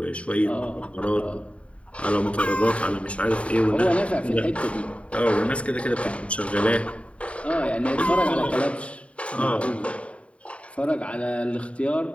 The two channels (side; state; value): right; late; 0.063 ms